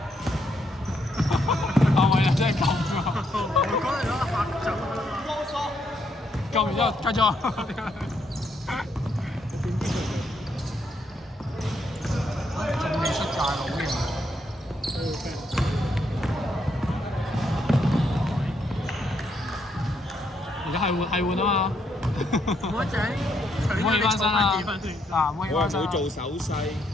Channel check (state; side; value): normal; both; correlation 0.75